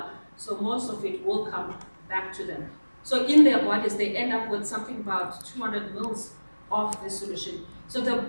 so most of it will come back to them. So in their bodies, they end up with something about 200 mils of this solution. So the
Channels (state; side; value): inverted; both; correlation -1.00